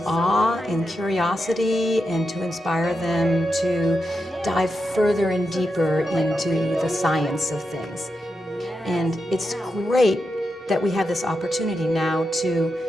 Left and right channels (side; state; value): both; normal; correlation 0.87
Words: awe and curiosity, and to inspire them to dive further and deeper into the science of things. And it's great that we have this opportunity now to